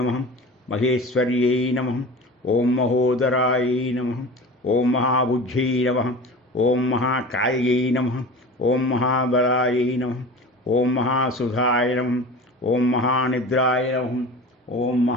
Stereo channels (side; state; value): both; normal; correlation 0.36